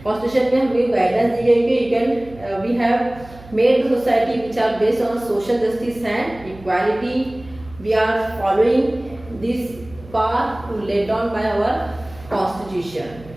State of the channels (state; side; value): noise; right; hum, 20 dB below the sound